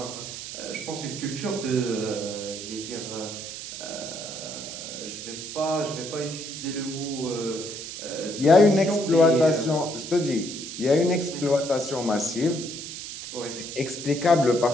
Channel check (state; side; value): noise; right; hiss, 9 dB below the sound